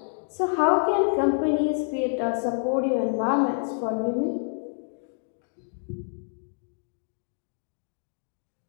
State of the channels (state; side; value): silent; right; 60 dB below the other